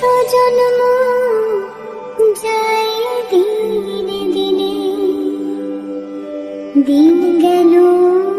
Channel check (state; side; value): identical; both; correlation 1.00